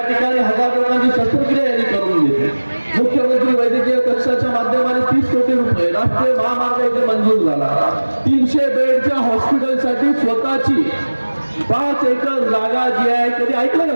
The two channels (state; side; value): inverted; both; correlation -1.00